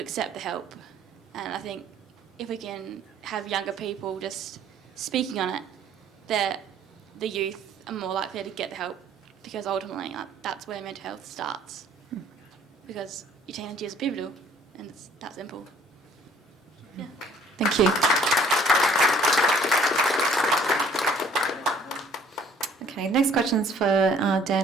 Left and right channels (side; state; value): both; normal; correlation 0.57